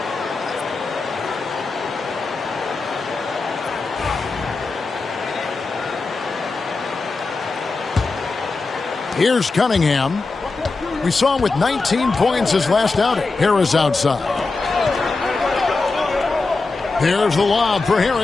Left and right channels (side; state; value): right; quieter; 3.8 dB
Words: Here's Cunningham. We saw him with 19 points his last outing. Harris outside. There's the lob for